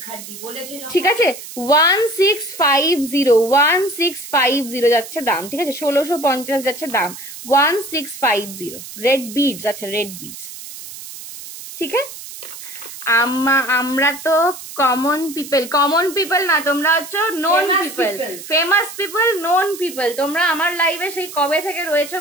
ঠিক আছে? 1650 1650 যাচ্ছে দাম, ঠিক আছে? 1650 যাচ্ছে দাম, 1650 রেড বিডস। আচ্ছা রেড বিডস, ঠিক আছে? আমরা তো কমন পিপল না, তোমরা হচ্ছে known people, famous people, known people. তোমরা আমার লাইভে সেই কবে থেকে রয়েছে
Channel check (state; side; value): noise; right; hiss, 13 dB below the sound